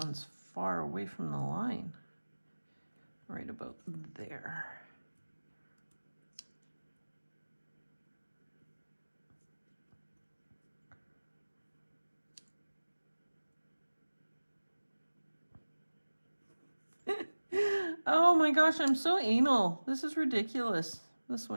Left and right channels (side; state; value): both; inverted; correlation -1.00